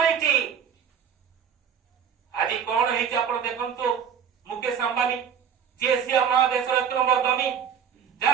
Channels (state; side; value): quieter; left; 7.7 dB